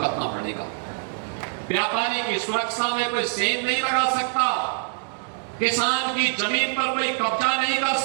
पड़ेगा। व्यापारी की सुरक्षा में कोई सेंध नहीं लगा सकता, किसान की जमीन पर कोई कब्जा नहीं कर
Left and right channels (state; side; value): silent; left; 62 dB below the other